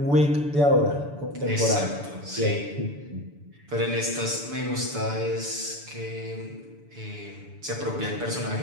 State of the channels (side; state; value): left; late; 6.9 ms